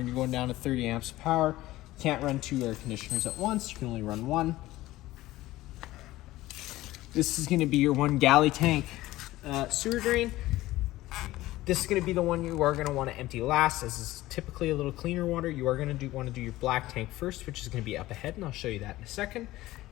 you're going down to 30 amps of power, you can't run 2 air conditioners at once. You can only run 1. This is going to be your 1 galley tank sewer drain. This is going to be the one you are going to want to empty last, as is typically a little cleaner water. You are going to want to do your black tank first, which is going to be up ahead, and I'll show you that in a second.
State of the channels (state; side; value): quieter; right; 16.9 dB